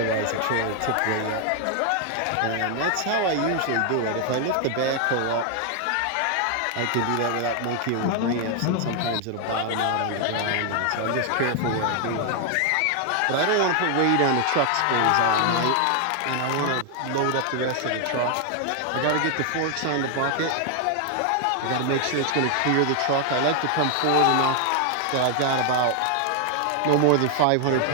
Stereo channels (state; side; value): different; both; correlation 0.00